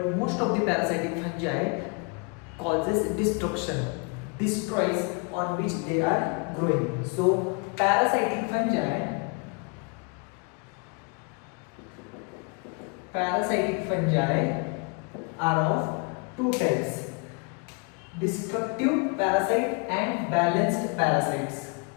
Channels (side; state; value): right; quieter; 33.4 dB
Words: most of the parasitic fungi causes destruction, destroys on which they are growing. So parasitic fungi are of two types: destructive parasite and balanced parasites.